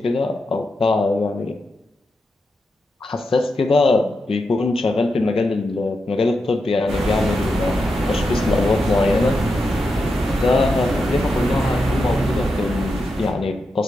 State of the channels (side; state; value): both; normal; correlation 0.87